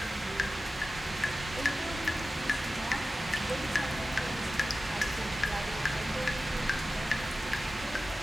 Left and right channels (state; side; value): normal; both; correlation 0.94